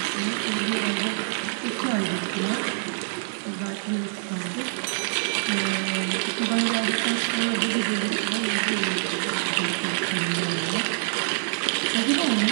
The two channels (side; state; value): left; silent; digital silence